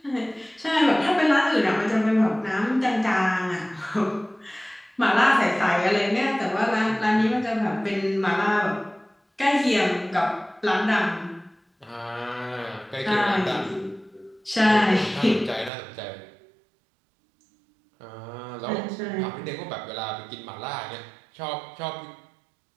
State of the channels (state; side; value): drops out; left; at 15.7 s